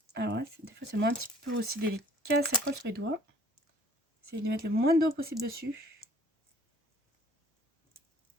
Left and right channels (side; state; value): both; normal; correlation 0.54